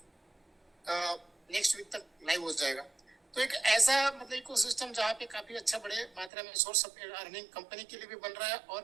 नेक्स्ट वीक तक लाइव हो जाएगा। तो एक ऐसा मतलब इकोसिस्टम जहाँ पे काफी अच्छा बड़े मात्रा में सोर्स ऑफ अर्निंग कंपनी के लिए भी बन रहा है और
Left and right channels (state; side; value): drops out; left; at 6.3 s